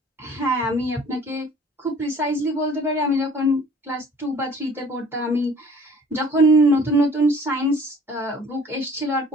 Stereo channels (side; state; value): both; normal; correlation 0.51